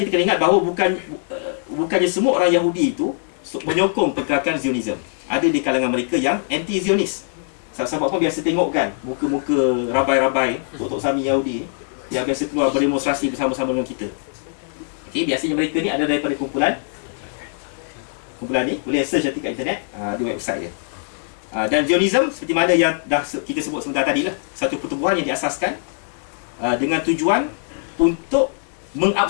kena ingat bahawa bukannya semua orang Yahudi itu menyokong pergerakan Zionism. Ada di kalangan mereka yang anti-Zionis. Sebab apa biasa tengok kan muka-muka rabai-rabai Tok Sami Yahudi yang biasa keluar berdemonstrasi bersama-sama dengan kita. Okey, biasanya mereka ni ada daripada kumpulan ni, boleh search nanti kat internet, di website dia. Dan Zionism seperti mana yang dah kita sebut sebentar tadi lah, satu pertubuhan yang diasaskan dengan tujuan untuk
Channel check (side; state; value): right; silent; digital silence